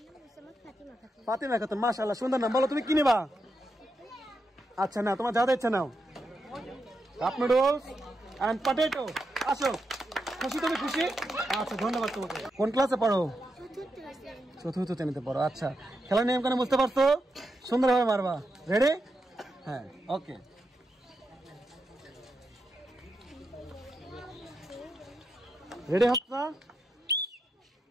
ফাতিমা খাতুন, মাশাআল্লাহ সুন্দর নাম। বলো তুমি কি নেবা? আচ্ছা না, তোমার যা ইচ্ছা নাও। Cup noodles and potato. আসো, খুশি? তুমি খুশি? আচ্ছা ধন্যবাদ তোমাকে। কোন ক্লাসে পড়ো? চতুর্থ শ্রেণীতে পড়ো। আচ্ছা, খেলার নিয়ম কেন বুঝতে পারছো? সুন্দরভাবে মারবা। রেডি? হ্যাঁ, ওকে। রেডি হচ্ছে?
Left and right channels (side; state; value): both; normal; correlation 0.85